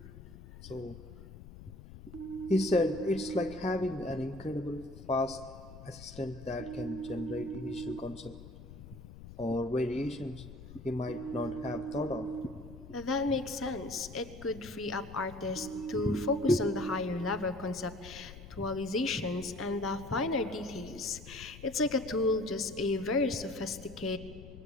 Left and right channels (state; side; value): noise; left; rumble, 15 dB below the sound